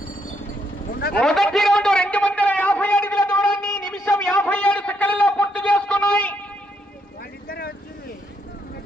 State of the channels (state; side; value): normal; both; correlation 0.75